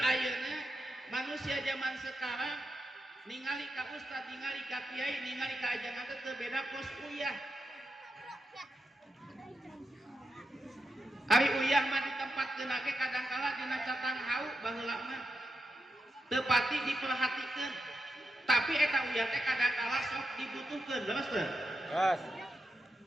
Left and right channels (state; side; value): normal; both; correlation 0.86